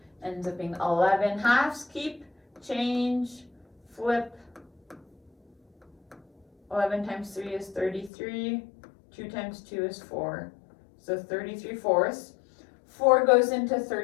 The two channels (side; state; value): right; drops out; at 8.1 s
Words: Ends up being 11 halves, keep, change, flip. 11 times 3 is 33. 2 times 2 is 4. So 33 fourths. 4 goes into